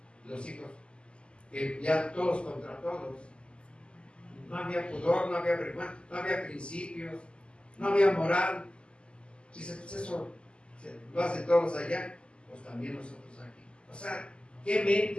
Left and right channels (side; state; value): right; late; 0.052 ms